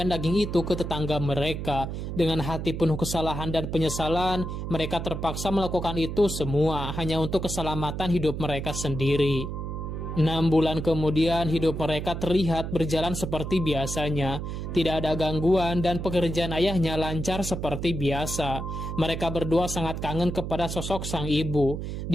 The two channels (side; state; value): right; noise; hum, 5 dB below the sound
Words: daging itu ke tetangga mereka. Dengan hati penuh kesalahan dan penyesalan, mereka terpaksa melakukan itu semua hanya untuk keselamatan hidup mereka sendiri. 6 bulan kemudian hidup mereka terlihat berjalan seperti biasanya. Tidak ada gangguan dan pekerjaan ayahnya lancar seperti biasa. Mereka berdua sangat kangen kepada sosok sang ibu.